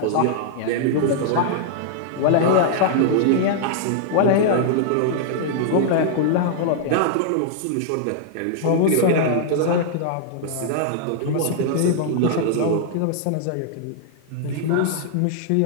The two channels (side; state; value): both; different; correlation -0.01